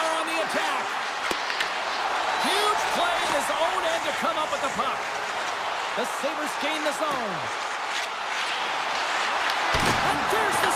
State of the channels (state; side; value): identical; both; correlation 1.00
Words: on the attack. Huge play in his own end to come up with the puck. The Sabres gain the zone. And there's the